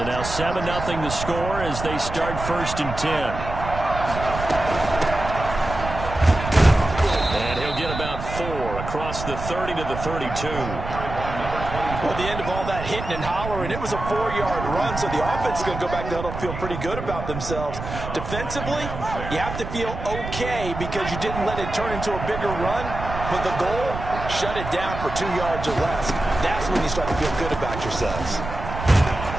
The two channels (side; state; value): right; noise; rumble, 7 dB below the sound